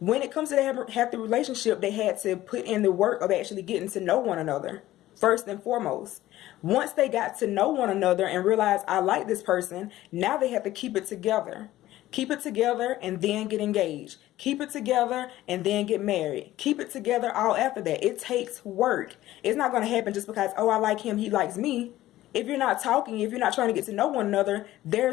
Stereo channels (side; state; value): right; quieter; 15.1 dB